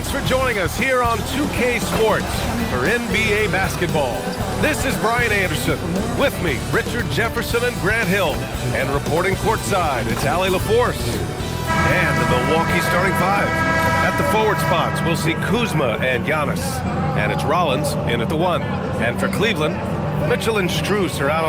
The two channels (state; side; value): identical; both; correlation 1.00